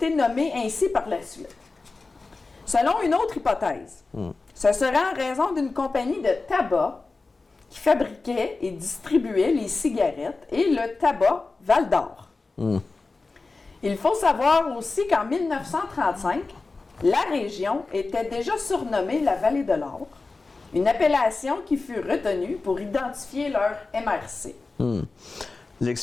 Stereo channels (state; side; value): quieter; right; 3.8 dB